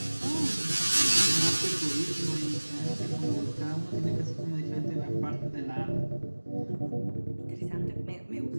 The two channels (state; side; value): inverted; both; correlation -1.00